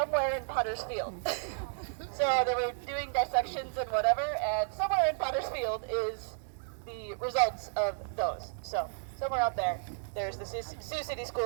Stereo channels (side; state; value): left; silent; digital silence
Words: in Pottersfield. So they were doing dissections and whatever, and somewhere in Pottersfield is the results of those. So somewhere out there, there's the Sioux City